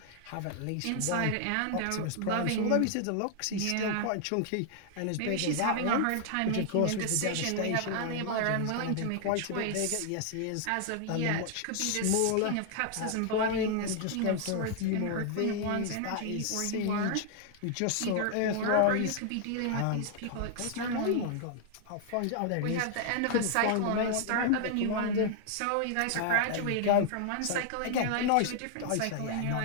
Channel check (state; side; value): different; both; correlation 0.00